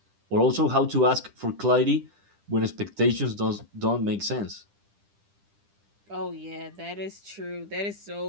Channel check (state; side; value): late; left; 10 ms